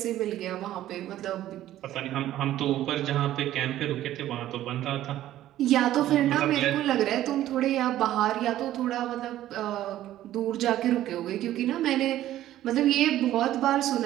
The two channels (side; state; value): left; quieter; 13.4 dB